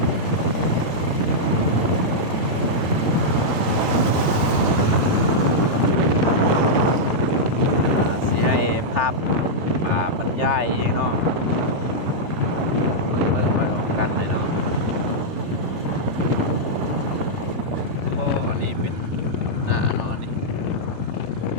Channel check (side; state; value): left; late; 3.5 ms